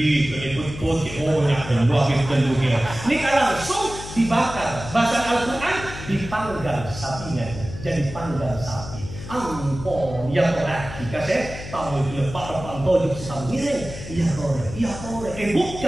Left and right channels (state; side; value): noise; left; hum, 11 dB below the sound